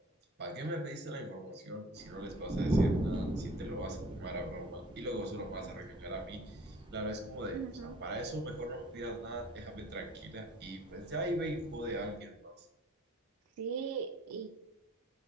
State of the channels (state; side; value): normal; both; correlation 0.52